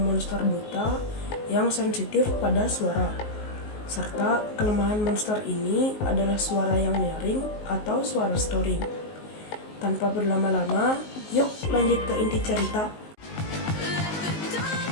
buta yang sensitif pada suara. Serta kelemahan monster ini adalah suara yang nyaring atau suara snoring. Tanpa berlama-lama, yuk lanjut ke inti cerita.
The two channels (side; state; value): right; late; 19 ms